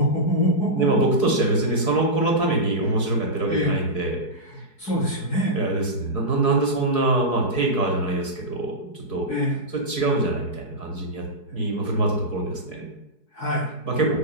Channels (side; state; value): right; late; 4.7 ms